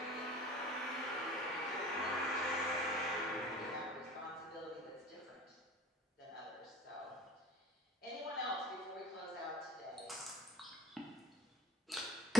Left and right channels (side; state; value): both; normal; correlation 0.40